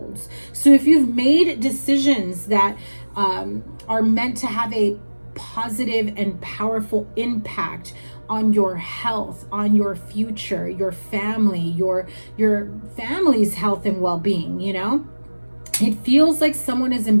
So if you've made decisions that are meant to have a positive and powerful impact on your health, on your future, your family, your family's health and well-being, you know, It feels like someone is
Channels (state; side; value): inverted; both; correlation -1.00